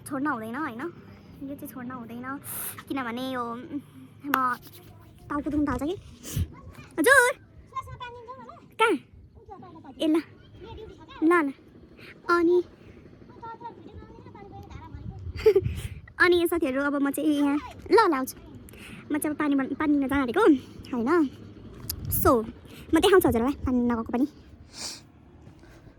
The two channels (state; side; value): identical; both; correlation 1.00